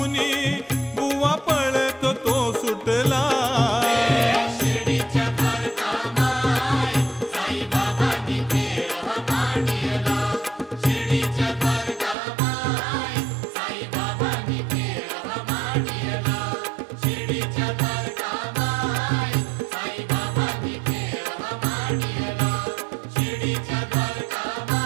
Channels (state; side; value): drops out; left; at 12.2 s